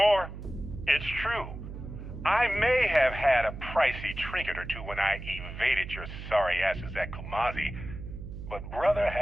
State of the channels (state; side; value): noise; right; hum, 10 dB below the sound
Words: It's true. I may have had a pricey trinket or two when I evaded your sorry asses at Kumazi, but brother